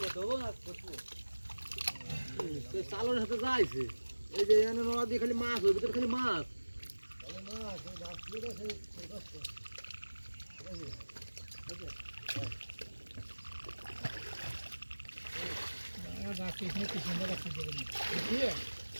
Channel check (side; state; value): both; inverted; correlation -1.00